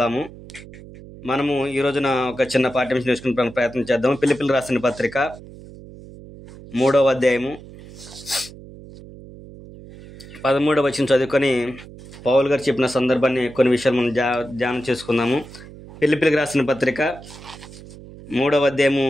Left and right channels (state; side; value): noise; right; hum, 17 dB below the sound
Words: మనము ఈ రోజున ఒక చిన్న పాఠ్యాంశం నేర్చుకునే ప్రయత్నం చేద్దాము. ఫిలిప్పీయులకు రాసిన పత్రిక 3వ అధ్యాయము 13వ వచనం చదువుకొని పౌలు గారు చెప్పిన సందర్భాన్ని కొన్ని విషయాలు మనం ధ్యానం చేసుకుందాము. ఫిలిప్పీయులకు రాసిన పత్రిక 3వ అధ్యాయము